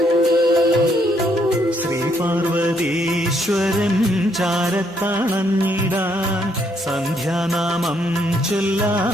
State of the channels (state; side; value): normal; both; correlation 0.72